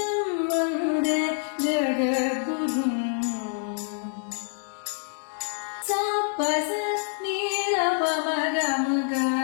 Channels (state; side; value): silent; right; 56 dB below the other